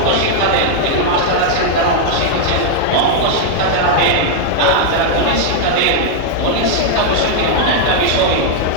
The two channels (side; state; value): both; different; correlation -0.01